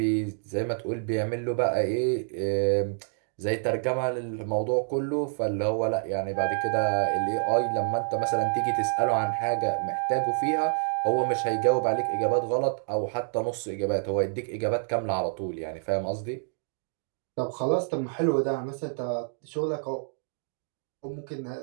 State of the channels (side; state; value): left; silent; digital silence